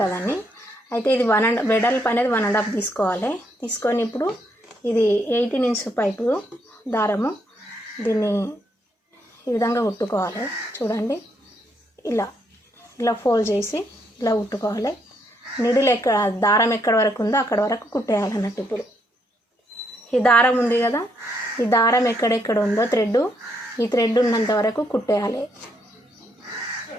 అయితే ఇది వెడల్పు అనేది 1.5 తీసుకోవాలి. తీసుకొని ఇప్పుడు ఇది 18 ఇంచ్ పైపు దారము, దీన్ని ఈ విధంగా కుట్టుకోవాలి. చూడండి, ఇలా ఫోల్డ్ చేసి ఇలా కుట్టుకోవాలి. నిడిల్ దారం ఎక్కడ వరకు ఉందో అక్కడ వరకు కుట్టేయాలన్నట్టు. ఇప్పుడు ఈ దారం ఉంది కదా, ఈ దారం ఎక్కడెక్కడ ఉందో ఈ థ్రెడ్ ఉన్నంత వరకు కుట్టేయాలి.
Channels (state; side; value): normal; both; correlation 0.75